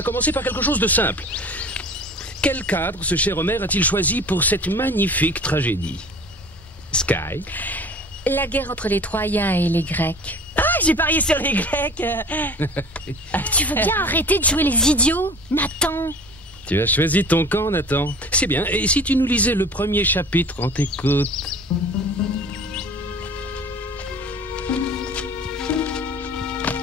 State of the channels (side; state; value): both; normal; correlation 0.42